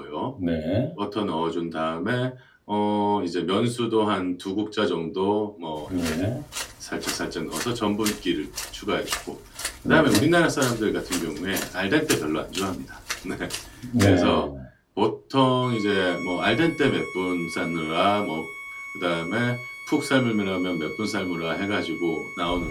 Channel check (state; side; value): identical; both; correlation 1.00